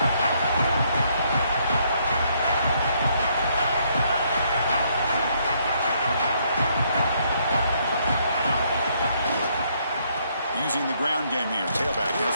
Using the ground game here. Tailback has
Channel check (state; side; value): inverted; both; correlation -0.71